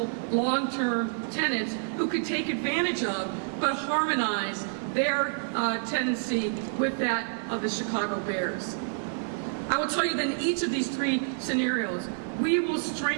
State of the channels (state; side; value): silent; left; 59 dB below the other